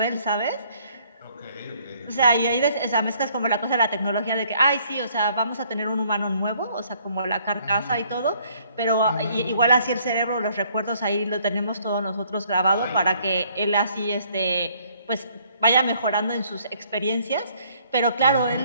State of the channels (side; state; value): both; inverted; correlation -0.63